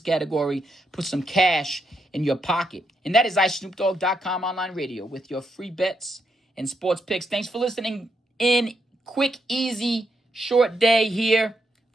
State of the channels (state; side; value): normal; both; correlation 0.80